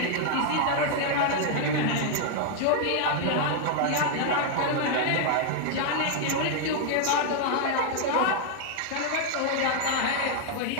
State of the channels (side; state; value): both; different; correlation 0.00